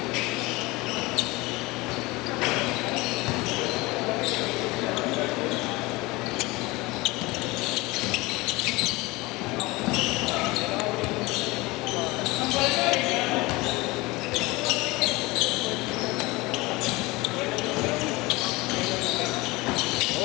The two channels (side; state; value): right; quieter; 22.4 dB